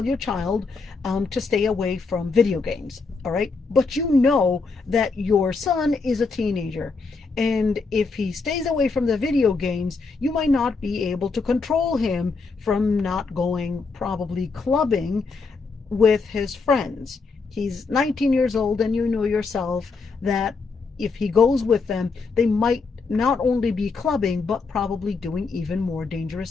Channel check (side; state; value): right; quieter; 4.4 dB